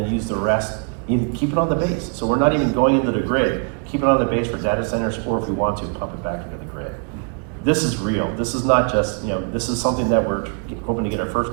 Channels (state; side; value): quieter; left; 39.4 dB